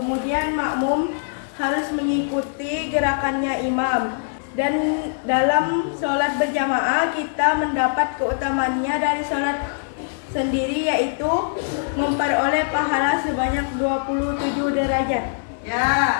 makmum harus mengikuti gerakannya imam. Dan dalam sholat berjamaah kita mendapat keutamaannya dari sholat sendiri, yaitu memperoleh pahala sebanyak 27 derajat. Ya,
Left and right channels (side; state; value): right; silent; digital silence